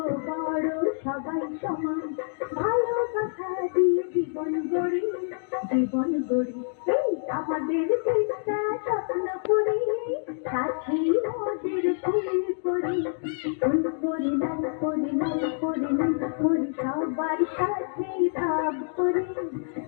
বড় সবাই সমান। ভালোবাসা দিয়ে জীবন গড়ি, জীবন গড়ি। এই আমাদের দেশটা স্বপ্ন করি, সাথী মোদের ফুল করি। ফুল করি লাল করি লাল করি লাল করি, সবার সাথে ভাব করি,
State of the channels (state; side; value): silent; right; digital silence